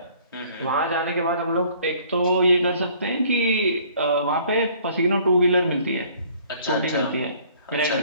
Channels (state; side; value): inverted; both; correlation -0.57